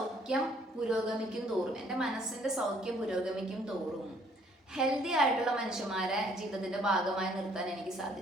പുരോഗമിക്കും തോറും, എൻ്റെ മനസ്സിൻ്റെ സൗഖ്യം പുരോഗമിക്കും തോറും ഹെൽത്തി ആയിട്ടുള്ള മനുഷ്യന്മാരെ ജീവിതത്തിൻ്റെ ഭാഗമായി നിർത്താൻ എനിക്ക്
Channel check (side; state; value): both; normal; correlation 0.62